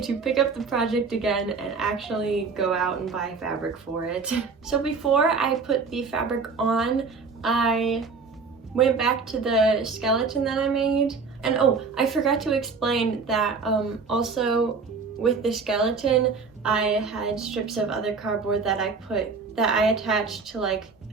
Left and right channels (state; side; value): quieter; left; 4.8 dB